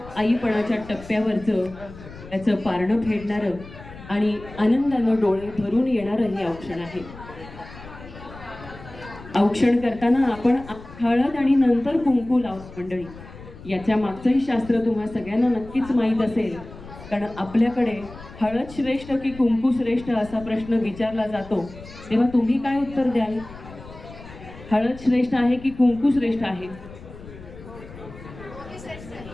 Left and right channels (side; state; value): left; noise; rumble, 16 dB below the sound